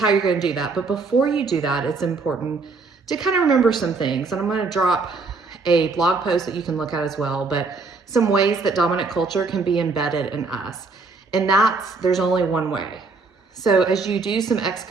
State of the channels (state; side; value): quieter; left; 4.1 dB